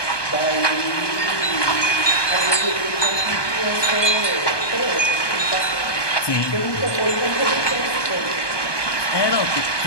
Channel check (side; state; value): right; late; 1.2 ms